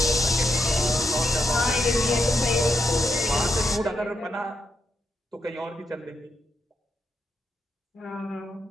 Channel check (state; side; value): normal; both; correlation 0.81